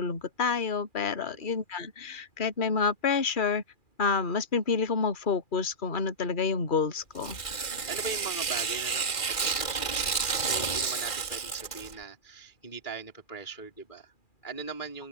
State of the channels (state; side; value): late; right; 2.4 ms